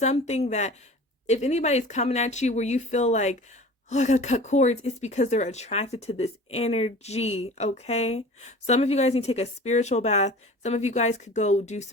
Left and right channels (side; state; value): both; normal; correlation 0.41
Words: that, if anybody's coming at you where you feel like, oh, I gotta cut cords, it's because they're attracted to this energy, okay? Some of you guys need to take a spiritual bath. Some of you guys could go do